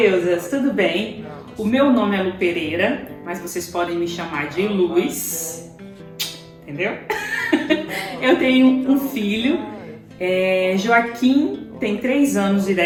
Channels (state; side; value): identical; both; correlation 1.00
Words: tudo bem? O meu nome é Lu Pereira, mas vocês podem me chamar de Luz. Entendeu? Eu tenho um filho, Joaquim, tem 3 anos e